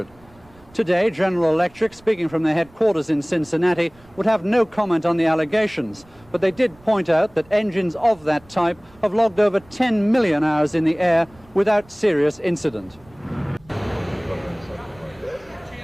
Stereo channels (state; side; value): noise; right; rumble, 27 dB below the sound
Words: Today, General Electric, speaking from their headquarters in Cincinnati, would have no comment on the allegations, but they did point out that engines of that type have logged over 10 million hours in the air without serious incident.